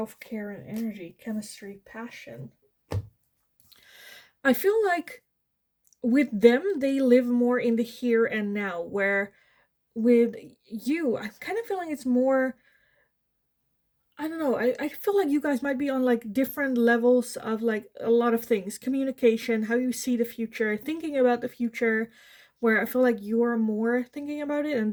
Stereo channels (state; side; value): identical; both; correlation 1.00